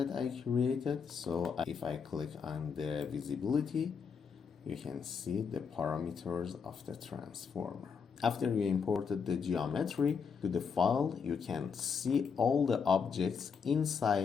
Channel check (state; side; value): quieter; right; 6.1 dB